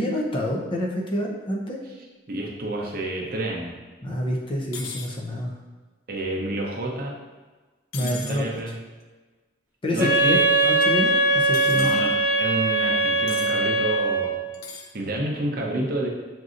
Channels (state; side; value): normal; both; correlation 0.05